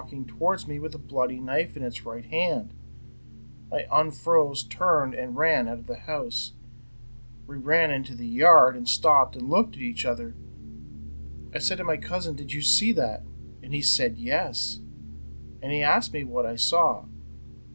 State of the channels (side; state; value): both; inverted; correlation -1.00